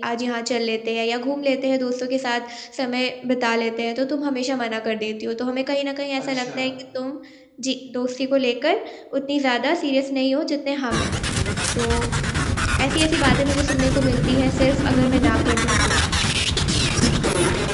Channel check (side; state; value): both; identical; correlation 1.00